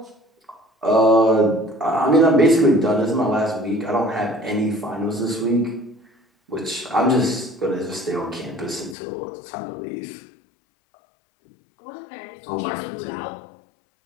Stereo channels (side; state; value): right; drops out; at 9.0 s